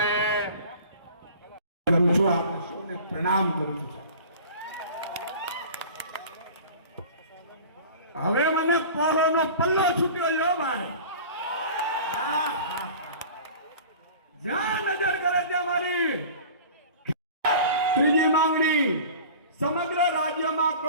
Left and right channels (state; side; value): inverted; both; correlation -0.41